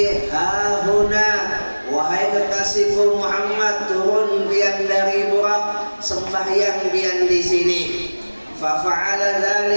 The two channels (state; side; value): inverted; both; correlation -1.00